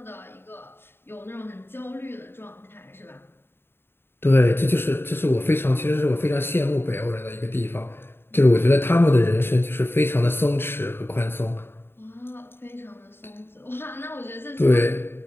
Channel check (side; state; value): right; late; 0.11 ms